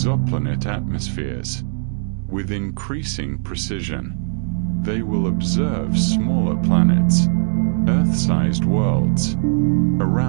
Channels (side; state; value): left; silent; digital silence